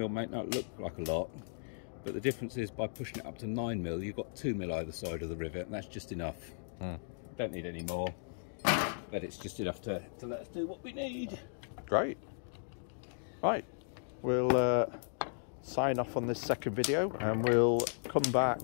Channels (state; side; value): silent; right; digital silence